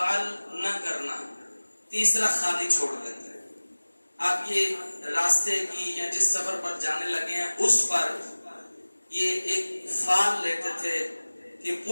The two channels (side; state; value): both; inverted; correlation -1.00